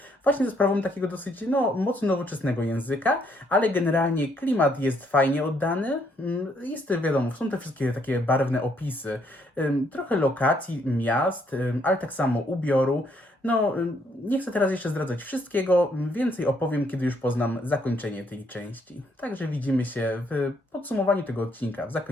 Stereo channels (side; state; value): both; normal; correlation 0.71